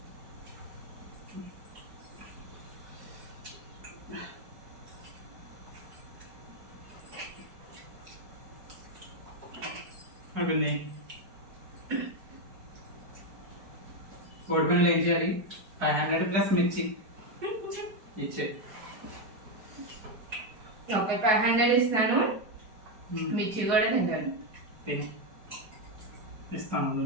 అయిపోయింది. కోడి పిల్లలు ఏం చేయాలి? 500 ప్లస్ మిర్చి ఇచ్చే. ఓకే, 500 ఇస్తాను, మిర్చి కూడా తింటాను. ఇస్తాను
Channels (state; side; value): late; left; 4.7 ms